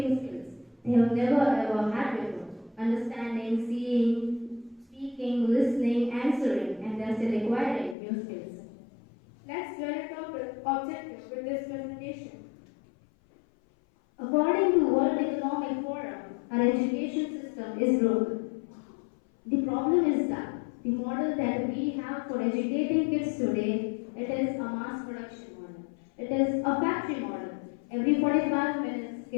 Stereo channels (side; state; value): right; drops out; at 8.0 s